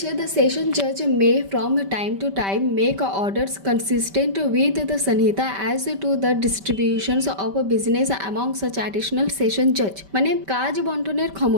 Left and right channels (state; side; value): late; left; 5.1 ms